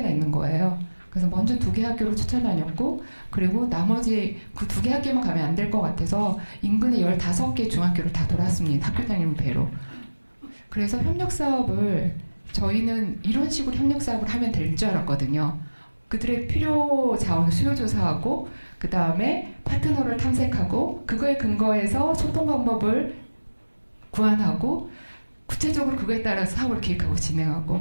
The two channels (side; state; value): both; inverted; correlation -1.00